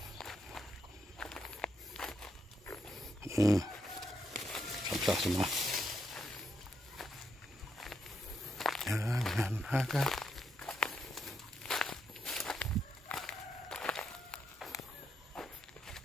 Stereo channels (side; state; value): both; normal; correlation 0.80